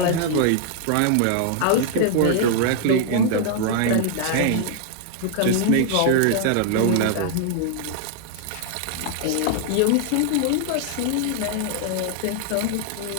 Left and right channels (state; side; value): different; both; correlation 0.00